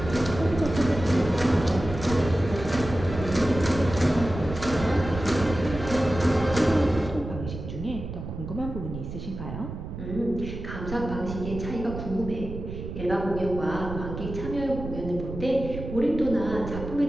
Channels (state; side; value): noise; right; rumble, 8 dB below the sound